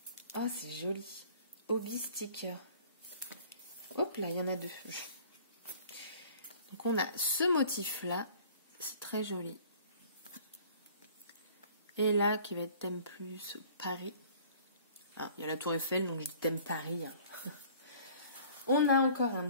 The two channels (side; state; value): both; inverted; correlation -0.51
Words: Oh, c'est joli. Hobby sticker. Hop là, il y en a deux. Donc, on a ce motif-là. C'est très joli. Et là, qui va être thème plus Paris. Ah, il y a la Tour Eiffel, donc je dis thème Paris. Hein. On a encore un